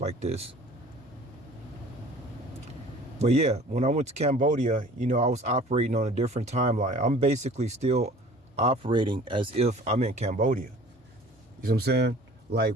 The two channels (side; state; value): both; normal; correlation 0.47